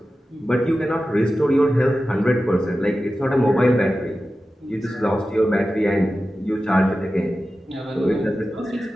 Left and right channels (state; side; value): normal; both; correlation 0.93